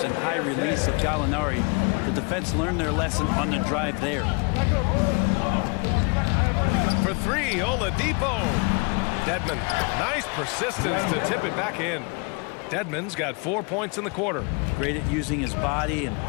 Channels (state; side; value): quieter; right; 32.9 dB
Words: and high release of Gallinari. The defense learned their lesson on the drive there. For 3, Oladipo. Dedmon, nice persistence to tip it back in. Dedmon's got 4 points in the quarter. Great at using his body and